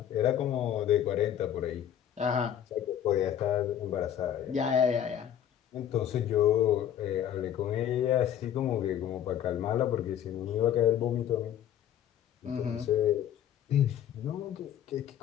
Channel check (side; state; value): right; quieter; 10.2 dB